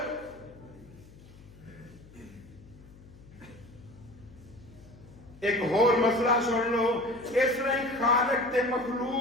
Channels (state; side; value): noise; left; hum, 21 dB below the sound